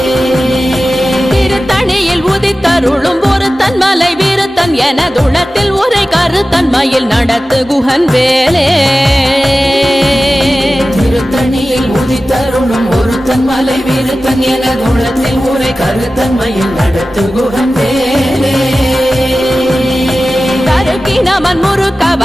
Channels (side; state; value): both; normal; correlation 0.95